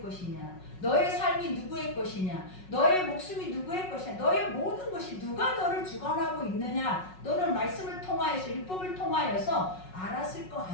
것이냐, 너의 삶이 누구의 것이냐, 너의 목숨이 누구의 것이냐, 너의 모든 것이 누가 너를 주관하고 있느냐, 너는 말씀을 통하여서 율법을 통하여서 알았을 거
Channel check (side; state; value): right; late; 5.4 ms